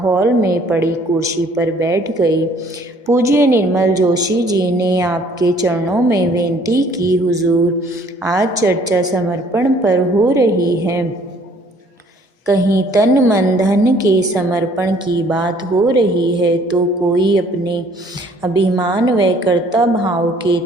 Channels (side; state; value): both; normal; correlation 0.58